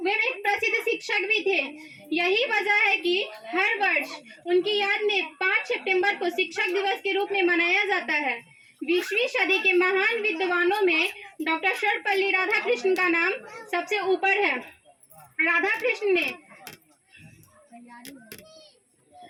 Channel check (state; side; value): identical; both; correlation 1.00